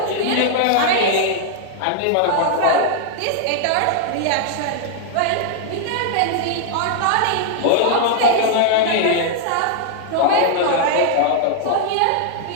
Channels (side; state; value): both; different; correlation -0.01